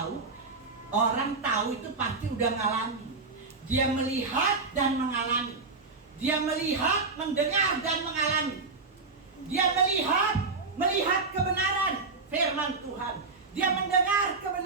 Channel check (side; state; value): left; quieter; 4.1 dB